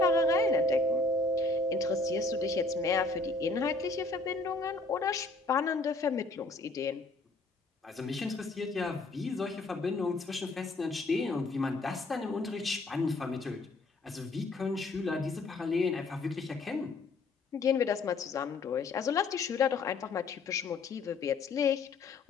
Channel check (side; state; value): right; quieter; 3.4 dB